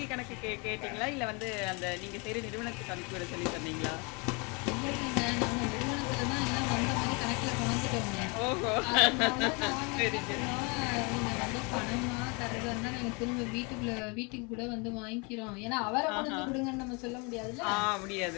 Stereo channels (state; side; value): quieter; right; 30.8 dB